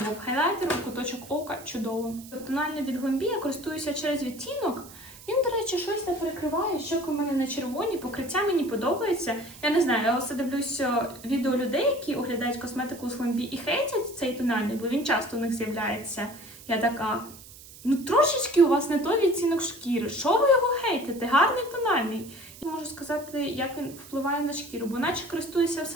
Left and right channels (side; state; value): right; noise; hiss, 18 dB below the sound